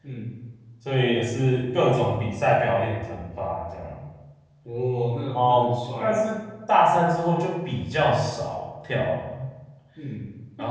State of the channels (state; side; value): identical; both; correlation 1.00